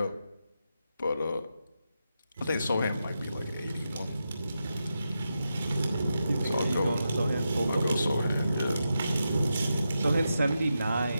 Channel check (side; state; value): both; inverted; correlation -0.88